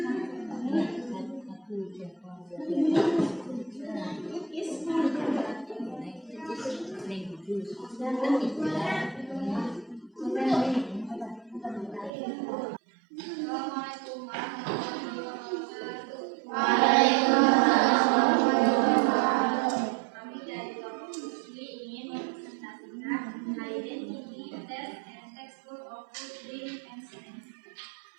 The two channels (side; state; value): left; drops out; at 12.1 s